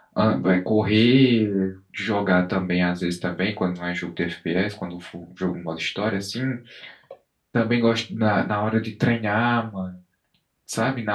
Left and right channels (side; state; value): both; identical; correlation 1.00